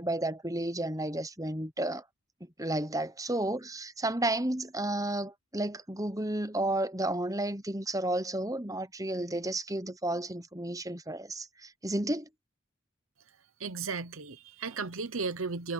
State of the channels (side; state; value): both; normal; correlation 0.63